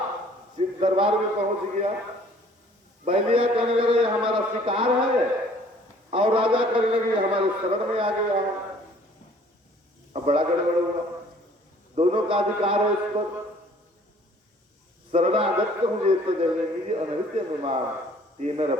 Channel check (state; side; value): normal; both; correlation 0.55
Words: दरबार में पहुंच गया। बहेलिया कहने लगे हमारा शिकार है, और राजा कहने लगे हमारे शरण में आ गया। अब बड़ा गड़बड़ हुआ, दोनों का अधिकार है उस पर। शरणागत हूँ ये तो जनेगी अनृत्य विमान, ये मेरा